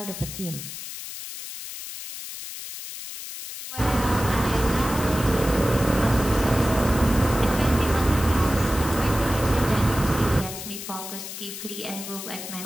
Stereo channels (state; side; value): noise; left; hiss, 10 dB below the sound